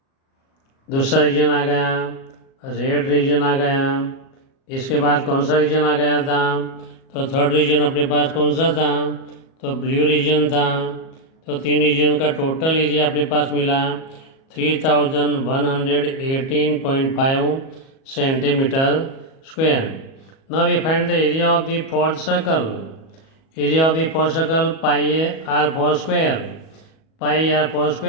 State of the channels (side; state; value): right; late; 37 ms